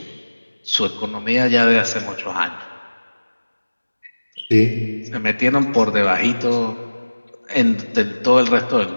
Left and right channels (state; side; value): inverted; both; correlation -1.00